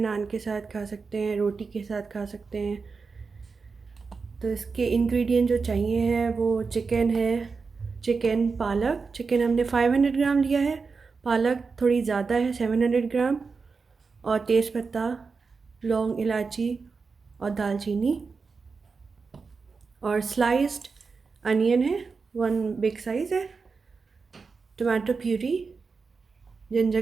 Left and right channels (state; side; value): quieter; left; 4.8 dB